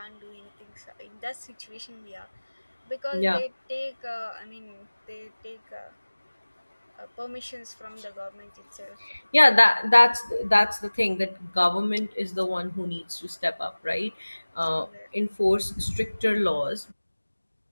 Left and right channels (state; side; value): inverted; both; correlation -1.00